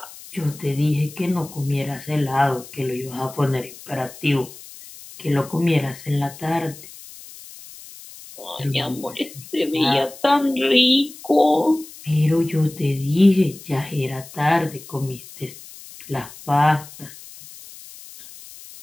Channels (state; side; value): noise; left; hiss, 17 dB below the sound